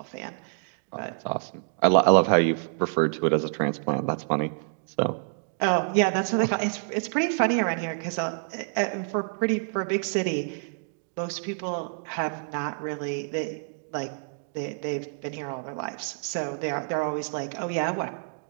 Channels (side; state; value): left; silent; digital silence